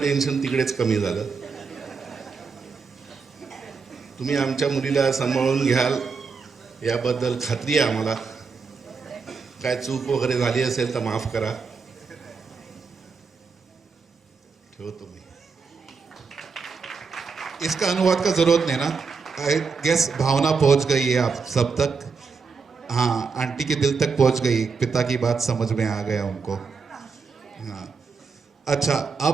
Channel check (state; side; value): quieter; left; 5.1 dB